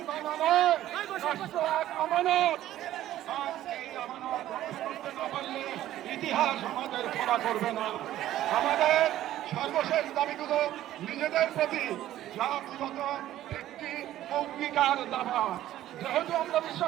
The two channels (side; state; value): left; quieter; 13.4 dB